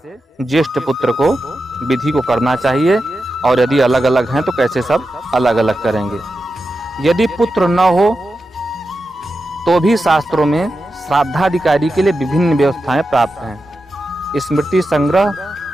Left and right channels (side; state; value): both; normal; correlation 0.90